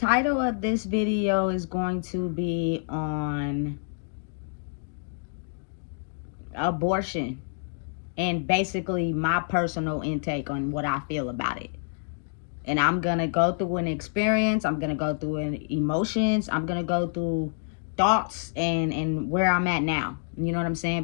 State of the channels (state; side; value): silent; right; digital silence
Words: of this video is going to be on abortion and basically my personal intake on what I feel about it. And I'm gonna go through an experience, I'm gonna go through emotions, I'm gonna go through thoughts and where I'm at now. You know what I'm saying?